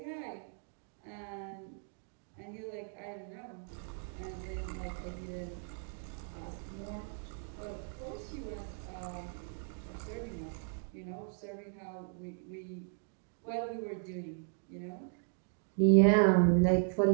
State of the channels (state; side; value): silent; left; 54 dB below the other